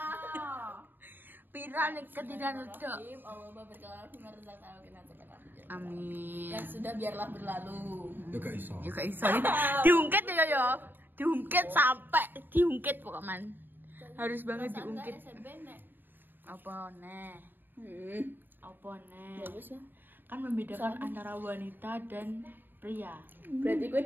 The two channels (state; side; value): late; left; 0.093 ms